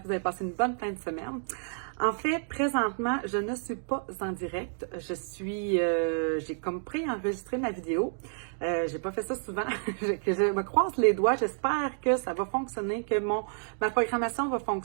que vous avez passé une bonne fin de semaine. En fait, présentement, je ne suis pas en direct, j'ai comme préenregistré ma vidéo. J'ai pas fait ça souvent, que je me croise les doigts, j'espère que ça va fonctionner, que ma programmation va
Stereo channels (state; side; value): silent; left; digital silence